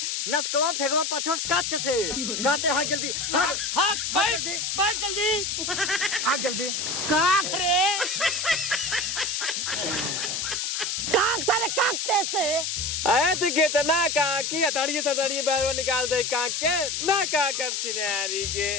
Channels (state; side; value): noise; left; hiss, 1 dB below the sound